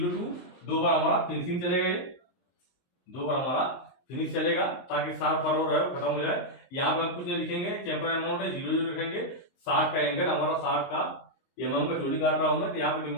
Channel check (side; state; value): right; late; 23 ms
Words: 2 बार हमारा फिनिशिंग चलेगा, ये 2 बार हमारा फिनिश चलेगा ताकि 60 पर और खत्म हो जाए। यहाँ पे हम कुछ नहीं लिखेंगे, चैंपर अमाउंट है 0 0 लिखेंगे, 60 का एंगल हमारा 60 का, mm का चोटी काट रहा हूं मैं तो यहाँ पे